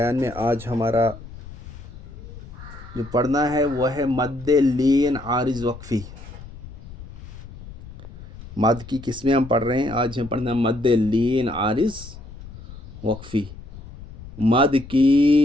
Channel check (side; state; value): left; noise; rumble, 15 dB below the sound